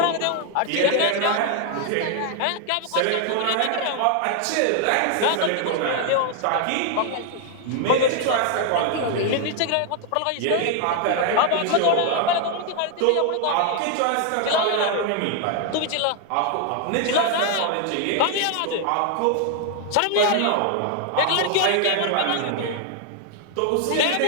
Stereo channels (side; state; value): both; different; correlation 0.00